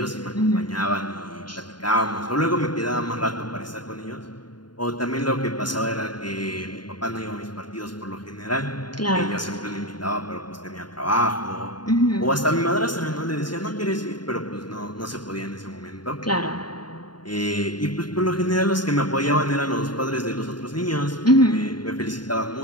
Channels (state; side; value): late; right; 0.71 ms